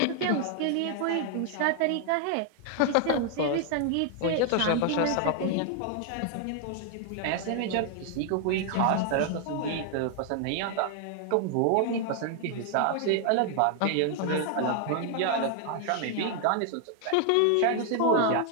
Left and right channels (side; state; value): both; different; correlation 0.00